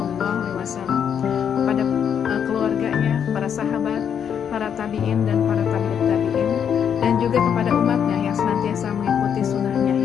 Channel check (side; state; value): right; quieter; 8.1 dB